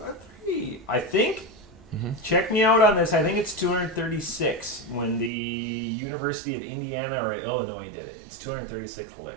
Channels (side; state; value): left; drops out; at 5.3 s